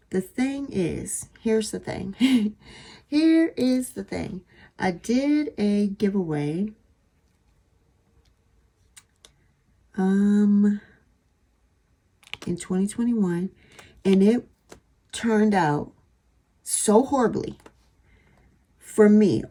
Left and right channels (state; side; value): identical; both; correlation 1.00